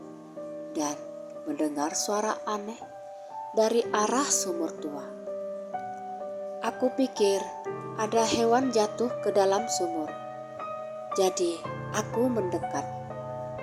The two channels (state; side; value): identical; both; correlation 1.00